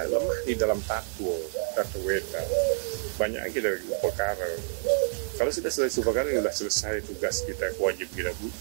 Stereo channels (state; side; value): silent; left; digital silence